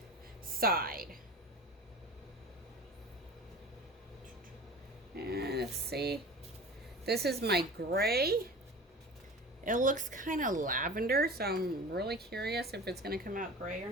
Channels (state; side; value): normal; both; correlation 0.37